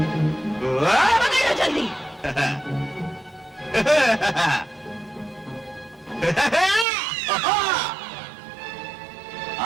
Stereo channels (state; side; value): drops out; left; at 6.9 s